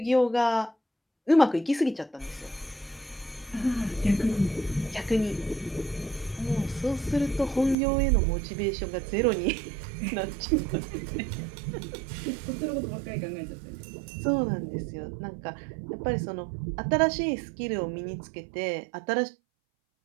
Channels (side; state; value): left; drops out; at 7.8 s